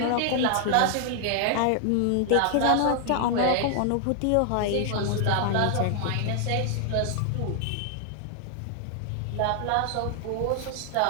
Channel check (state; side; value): different; both; correlation 0.00